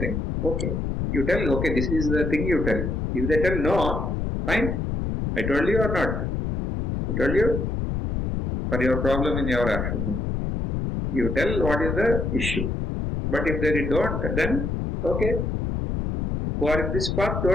okay. You tell, okay, this is the thing you tell. If they tell no, fine. I told you or not? I told you? For your problem in your action. You tell what is the issue. But if they don't, then, okay. Who are in this path,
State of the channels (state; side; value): noise; left; rumble, 1 dB below the sound